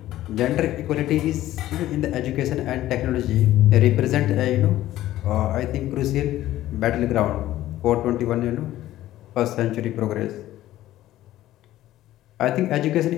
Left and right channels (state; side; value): quieter; right; 14.3 dB